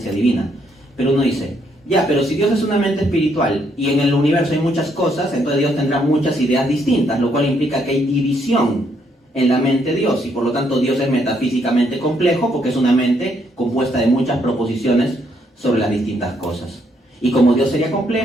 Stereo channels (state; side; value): normal; both; correlation 0.72